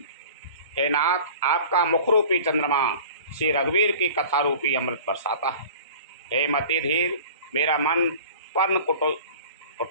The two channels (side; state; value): both; inverted; correlation -0.42